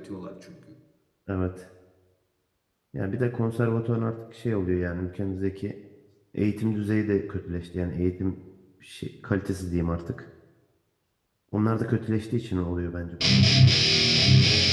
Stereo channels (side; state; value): both; identical; correlation 1.00